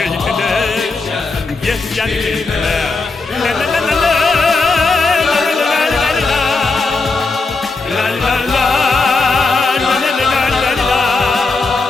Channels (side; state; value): right; quieter; 3.8 dB